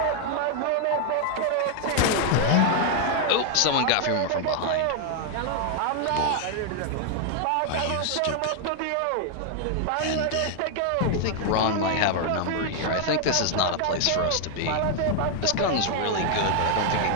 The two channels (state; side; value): different; both; correlation 0.00